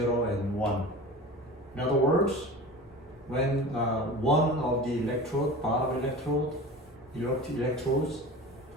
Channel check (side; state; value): both; normal; correlation 0.35